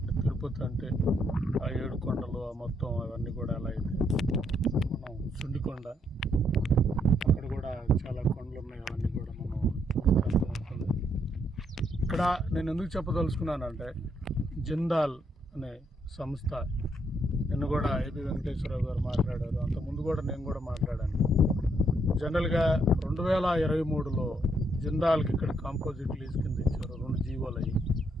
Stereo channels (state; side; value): normal; both; correlation 0.74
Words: తిరుపతి అంటే ఆ 7 కొండలు మొత్తం అవన్నీ కూడా ఎలా అయితే మనం సుండికొండ, అక్కడ కూడా చాలా కొండలు ఉన్నాయి, అవన్నీ కూడా మనం అర్థమవుతుంది. ఇక్కడ నేను ఎందుకు చెప్పదలుచుకున్నానంటే, జిందాల్ అనే సంస్థ నిన్న కూడా ఏపీ వెంకటేశ్వరరావు గారు మాట్లాడారు, అంతకుముందు కూడా నేను కూడా మాట్లాడాను. జనరల్గా 2023లో జిందాల్కి ఇక్కడ కాంపోజిట్ లీజ్ కింద ఇచ్చారు 2 జీవోలు అయ్యి.